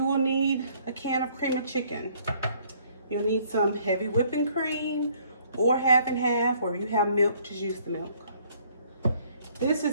will need a can of cream of chicken. You'll need some heavy whipping cream or half and half, or if you have milk, just use the milk. This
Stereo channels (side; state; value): both; inverted; correlation -0.62